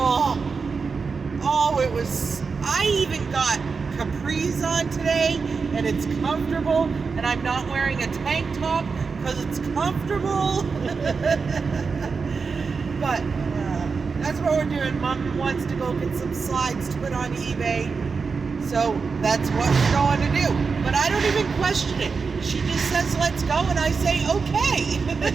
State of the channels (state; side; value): quieter; left; 5.0 dB